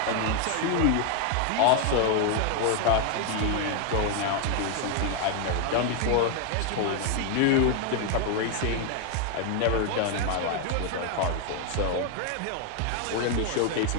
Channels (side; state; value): both; different; correlation 0.01